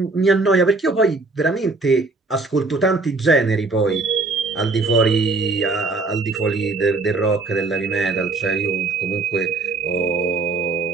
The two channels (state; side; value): quieter; left; 3.7 dB